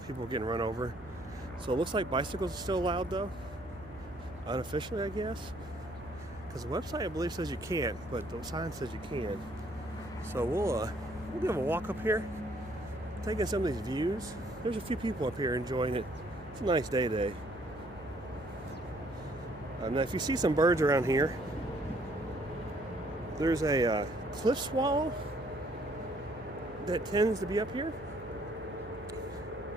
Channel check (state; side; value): noise; right; hum, 19 dB below the sound